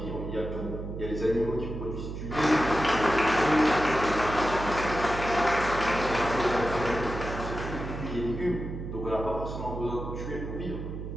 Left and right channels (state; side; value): noise; right; hum, 7 dB below the sound